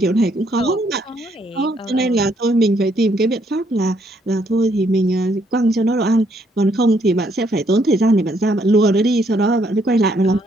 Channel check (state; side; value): normal; both; correlation 0.70